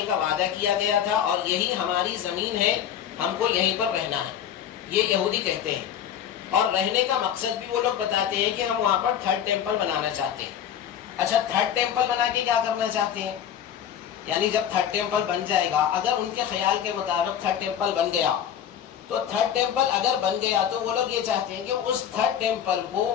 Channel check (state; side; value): quieter; right; 9.5 dB